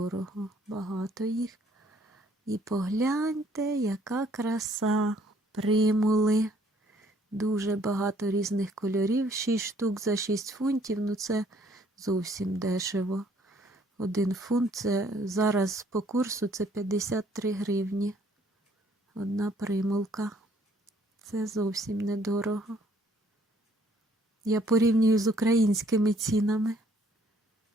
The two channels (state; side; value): normal; both; correlation 0.63